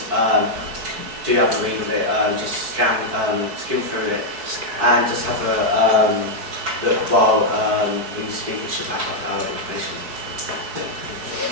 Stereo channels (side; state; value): left; late; 4.6 ms